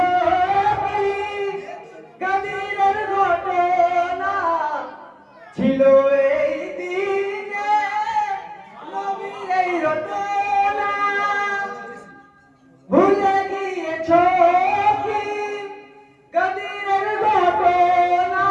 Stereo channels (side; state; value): both; identical; correlation 1.00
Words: কি গাদিরের ঘটনা, ছিল এই দিনে নবীর এই রটনা। ভুলে গিয়েছো কি গাদিরের ঘটনা,